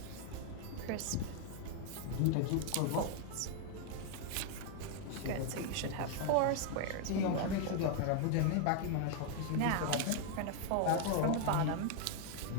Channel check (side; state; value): both; different; correlation 0.00